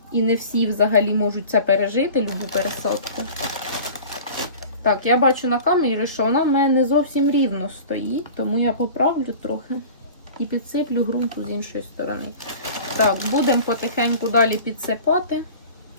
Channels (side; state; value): both; inverted; correlation -0.41